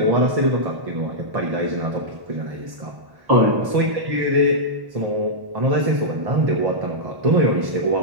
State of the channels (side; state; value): left; late; 1.1 ms